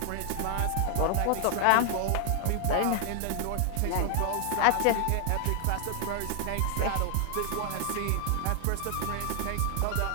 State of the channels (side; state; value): both; different; correlation 0.00